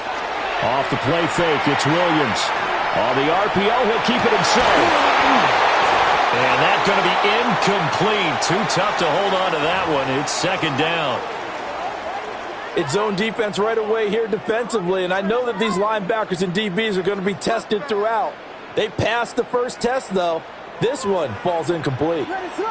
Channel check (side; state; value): both; identical; correlation 1.00